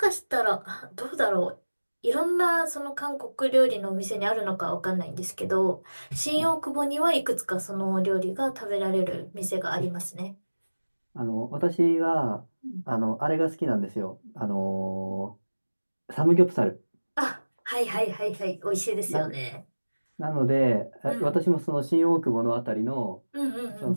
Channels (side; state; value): both; inverted; correlation -1.00